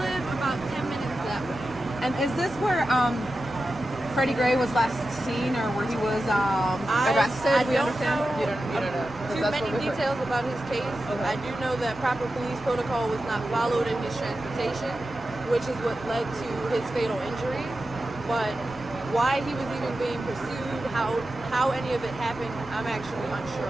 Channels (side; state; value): both; normal; correlation 0.92